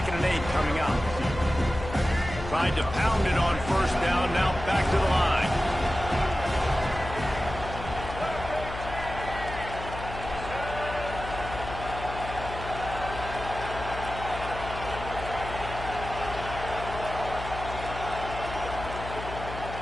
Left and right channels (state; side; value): noise; left; hum, 9 dB below the sound